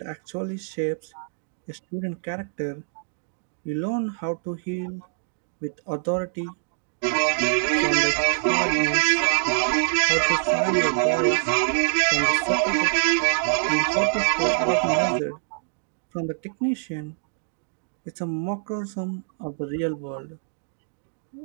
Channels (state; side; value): silent; left; digital silence